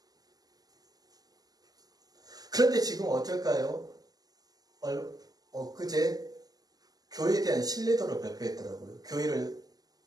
그런데 지금 어떨까요? 엊그제 교회에 대한 신뢰도를 발표했더라고요.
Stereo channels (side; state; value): left; late; 0.18 ms